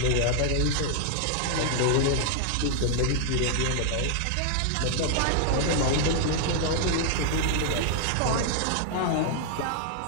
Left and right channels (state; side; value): different; both; correlation 0.00